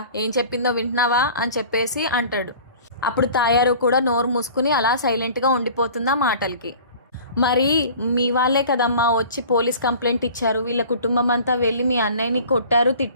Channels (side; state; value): both; inverted; correlation -0.44